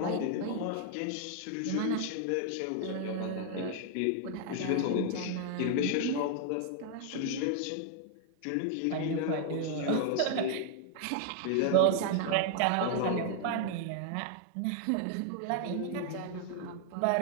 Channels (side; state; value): both; different; correlation 0.00